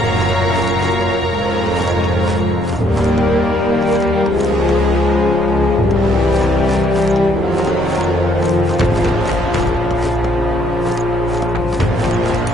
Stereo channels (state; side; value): normal; both; correlation 0.67